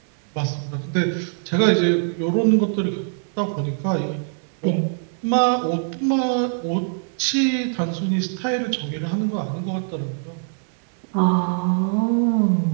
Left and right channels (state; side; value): silent; left; digital silence